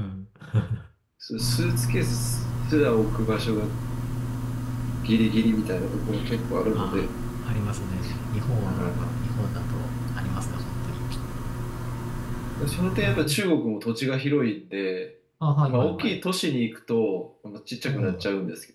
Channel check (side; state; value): both; identical; correlation 1.00